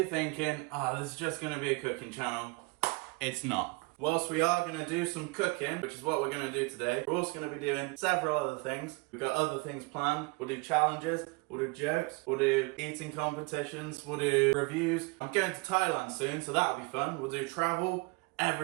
thinking, this is just going to be a cooking channel, it's not. Whilst we are going to do some cooking, which is what we're going to do today, we're also going to be doing several other things. We've got other things planned. We'll do challenges, we'll do jokes, we'll do eating competitions, we'll do reviews. I'm going to Thailand soon, so that'll be fun. We'll do travel,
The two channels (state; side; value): quieter; left; 28.0 dB